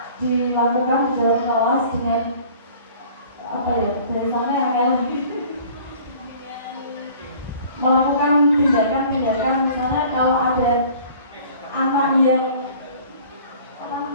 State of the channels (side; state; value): both; inverted; correlation -0.49